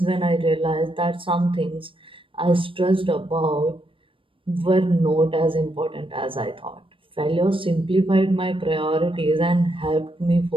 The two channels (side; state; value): left; late; 0.25 ms